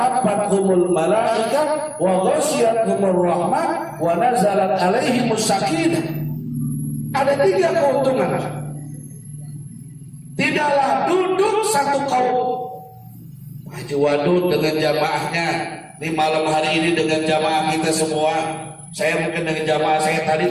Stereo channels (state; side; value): identical; both; correlation 1.00